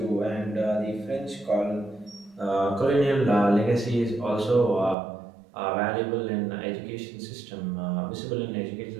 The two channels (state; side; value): drops out; left; at 5.0 s